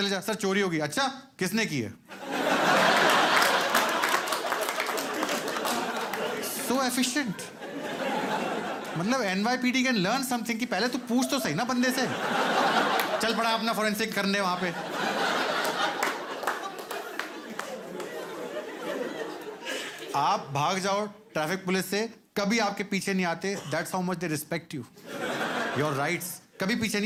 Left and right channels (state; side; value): identical; both; correlation 1.00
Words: जा, सर चोरी होगी, अच्छा किसने की है? सो एफिशिएंट। मतलब NYPD कैन लर्न समथिंग कि पहले तू पूछ तो सही ना बंदे से। चल पड़ा अपना फोरेंसिक करने वहां पे। आप भाग जाओ ट्रैफिक पुलिस से, कभी आपके पीछे नहीं आते। That's how much they respect you, your rights. कभी पीछे